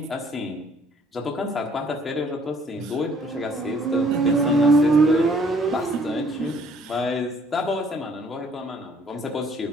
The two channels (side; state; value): both; normal; correlation 0.61